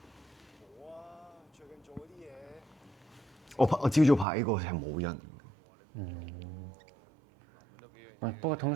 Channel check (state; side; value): drops out; left; at 4.2 s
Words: 我朝早拍呢個係冇人。不過通